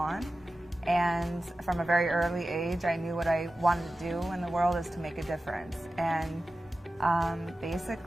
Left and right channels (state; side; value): normal; both; correlation 0.94